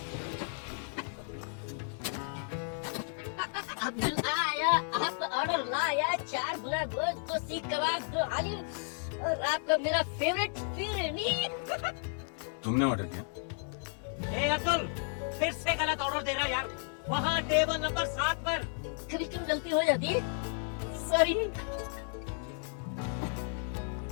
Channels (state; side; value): silent; right; 56 dB below the other